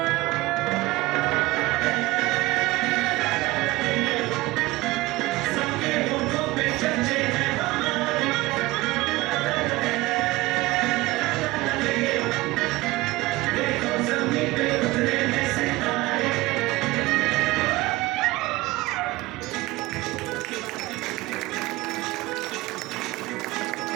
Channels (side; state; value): left; quieter; 19.8 dB